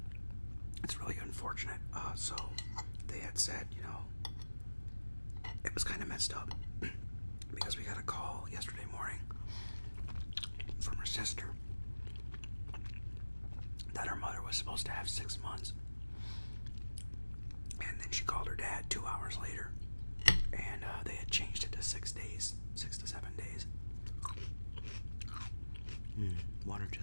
It's really unfortunate. So they had said, you know, it was kind of messed up because we got a call yesterday morning from her sister that her mother was supposed to have 6 months. And then she called her dad 2 hours later, and they had changed it to 6 days, 6 to 7 days. Water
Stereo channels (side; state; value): both; inverted; correlation -1.00